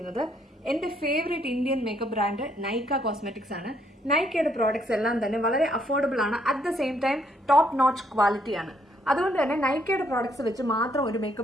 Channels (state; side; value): normal; both; correlation 0.70